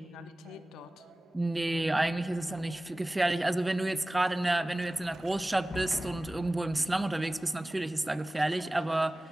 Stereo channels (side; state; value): both; normal; correlation 0.97